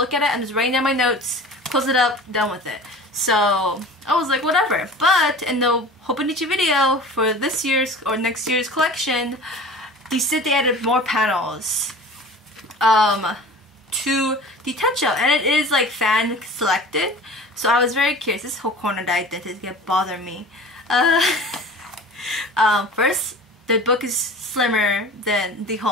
at it. I'm just writing down my notes, close it up, done with it. So I was like, whatever. But in the Hobonichi video for this year's or next year's collection, they said they added more panels to the Techo, and it is like fan selected. So I was very curious. This whole corner that I did is gonna bother me. First, the book is slimmer than the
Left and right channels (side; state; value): both; normal; correlation 0.40